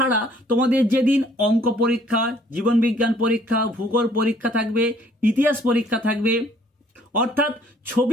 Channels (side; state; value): both; normal; correlation 0.60